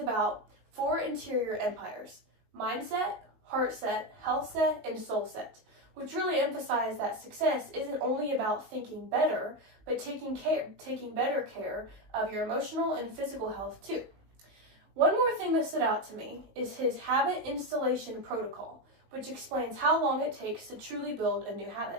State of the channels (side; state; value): left; late; 19 ms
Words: 4 interior empires: mindset, heart set, health set, and soul set, which really emphasize that success isn't only about thinking better, but taking better care of your emotional and physical health too. One more thing that stood out to me is his habit installation protocol, which explains how long it takes to truly build a new